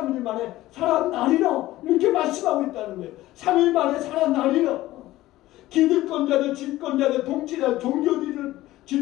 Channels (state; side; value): quieter; right; 16.3 dB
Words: 만에 살아나리라 이렇게 말씀하고 있다는 거예요. 3일 만에 살아나리라. 기득권자들, 집권자들, 통치자들, 종교